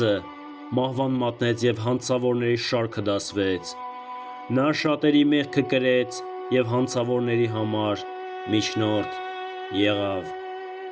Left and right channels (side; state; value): both; identical; correlation 1.00